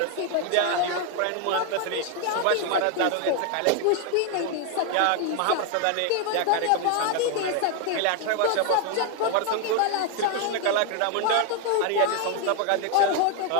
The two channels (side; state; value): both; different; correlation 0.00